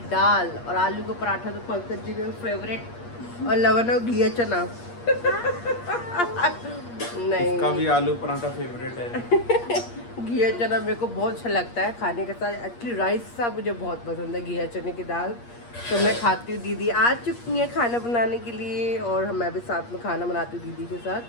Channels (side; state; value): right; late; 8.5 ms